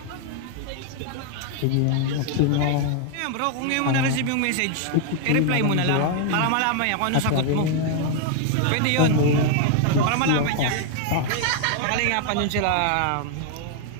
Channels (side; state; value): both; different; correlation 0.00